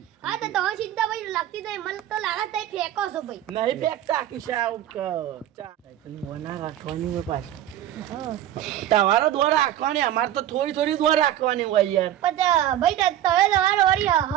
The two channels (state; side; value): quieter; left; 12.1 dB